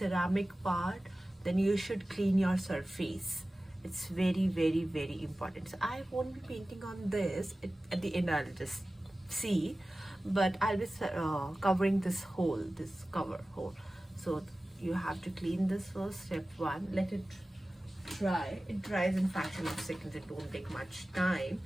part, then you should clean your surface. It's very important. So I won't be painting on this. At the end I'll just see, but I'll be covering this hole, this cover hole. So you have to clean this first. Step one, let it dry. It dries in fraction of seconds. It won't take much time.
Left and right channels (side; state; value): both; normal; correlation 0.96